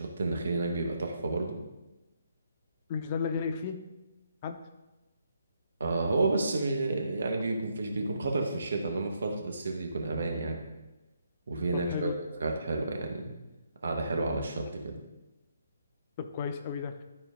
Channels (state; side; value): inverted; both; correlation -0.75